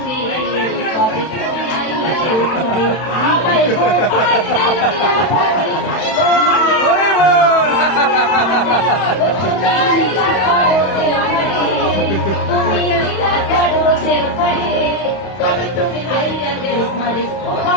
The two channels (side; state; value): right; late; 31 ms